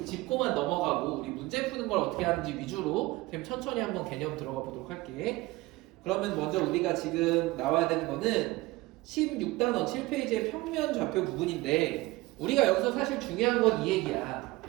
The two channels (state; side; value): quieter; left; 20.2 dB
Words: 짚고만 넘어가고 우리 문제 푸는 걸 어떻게 하는지 위주로 천천히 한번 개념 들어가 보도록 할게. 그러면 먼저 우리가 지금 나와야 되는 거는 16단원 7페이지의 평면 좌표 부분인데 우리가 여기서 사실 중요한 건 이 얘기야.